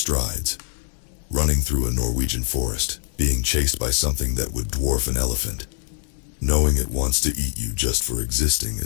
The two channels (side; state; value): right; silent; 57 dB below the other